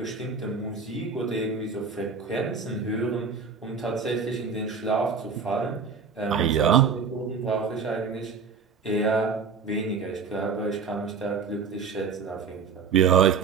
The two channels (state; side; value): quieter; left; 5.5 dB